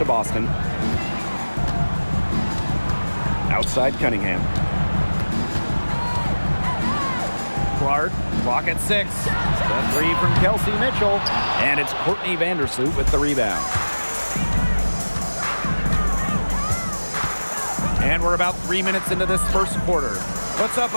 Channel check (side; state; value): both; inverted; correlation -1.00